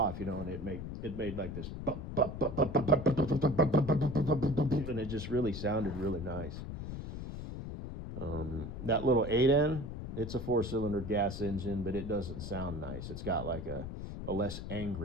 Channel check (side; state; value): left; noise; rumble, 7 dB below the sound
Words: and it made like this, and it just really sounded really nice. That little 8N, it's a 4-cylinder gas engine, but it doesn't sound nice. It's got like a less